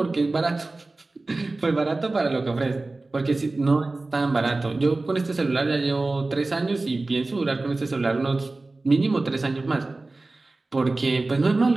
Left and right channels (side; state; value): left; quieter; 3.2 dB